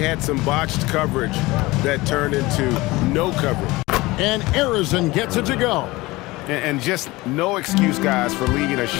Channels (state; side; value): quieter; right; 20.9 dB